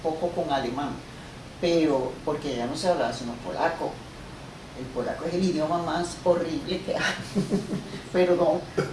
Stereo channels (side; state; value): both; identical; correlation 1.00